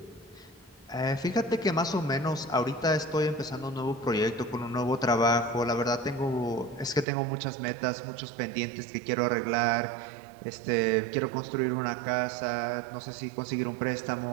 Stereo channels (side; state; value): left; drops out; at 7.1 s